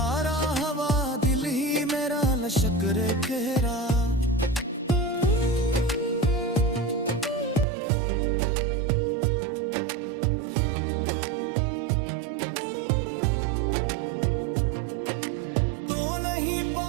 हवा दिल ही मेरा लश्कर कहरा।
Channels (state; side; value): drops out; left; at 7.7 s